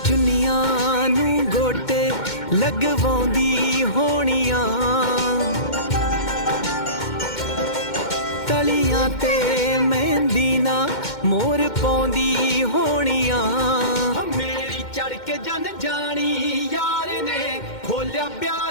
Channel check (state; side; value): late; right; 2.1 ms